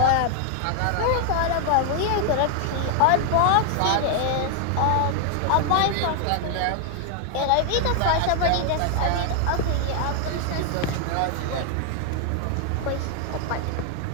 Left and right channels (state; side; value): different; both; correlation 0.00